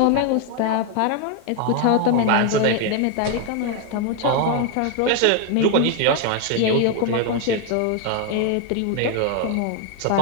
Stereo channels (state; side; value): different; both; correlation 0.01